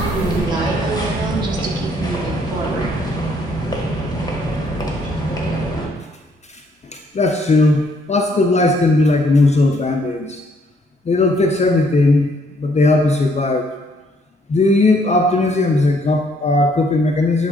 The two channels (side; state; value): both; normal; correlation 0.67